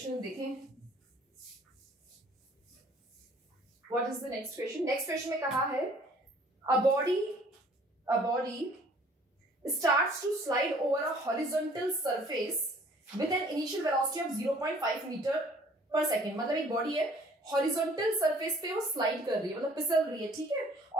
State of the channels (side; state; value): both; normal; correlation 0.55